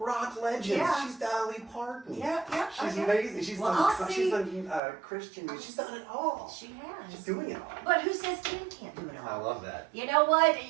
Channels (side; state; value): left; drops out; at 4.8 s